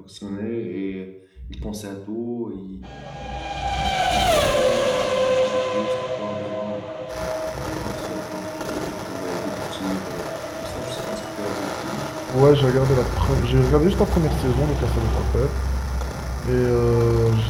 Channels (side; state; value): both; identical; correlation 1.00